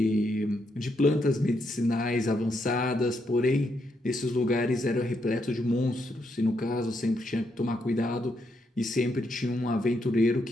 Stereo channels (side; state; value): both; normal; correlation 0.79